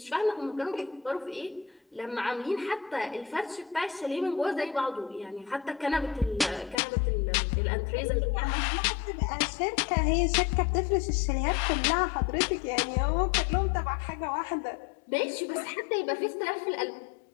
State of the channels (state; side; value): drops out; right; at 6.8 s